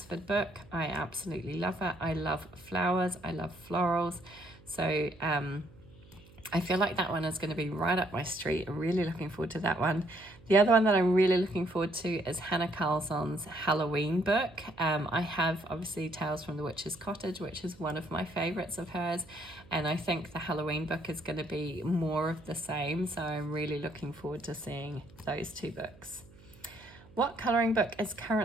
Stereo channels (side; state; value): right; noise; hum, 24 dB below the sound